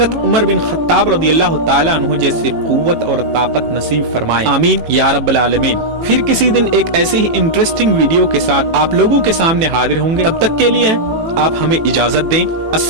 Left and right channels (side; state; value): left; late; 18 ms